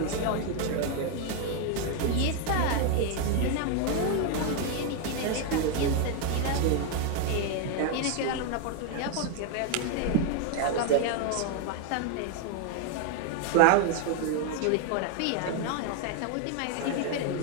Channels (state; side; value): different; both; correlation 0.01